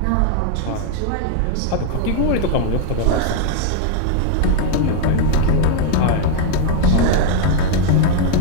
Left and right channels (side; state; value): both; different; correlation 0.00